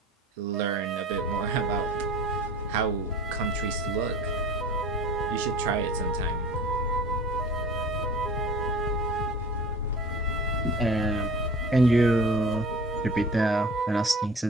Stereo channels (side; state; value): both; normal; correlation 0.42